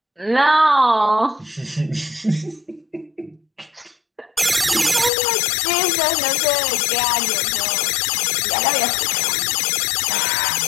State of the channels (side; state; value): right; drops out; at 5.1 s